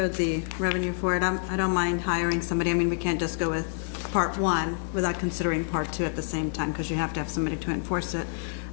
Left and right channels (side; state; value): right; silent; digital silence